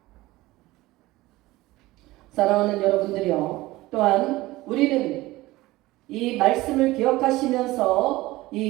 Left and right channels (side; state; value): left; quieter; 18.7 dB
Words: 사랑하는 여러분들이요, 또한 우리는 이 말씀을 기억하시면서